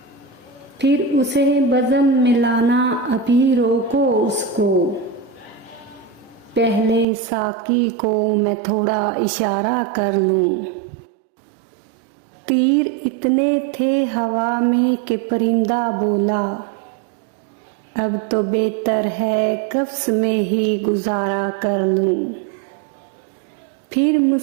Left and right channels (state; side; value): drops out; left; at 7.1 s